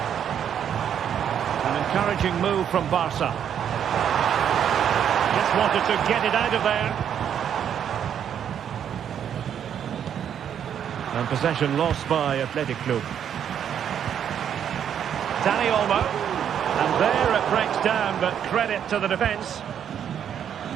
An encouraging move from Barca. Just wanted to get it out of there. And possession lost by Athletic Club. Dani Olmo. And there it breaks down, but credit to the defence.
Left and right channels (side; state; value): left; quieter; 8.9 dB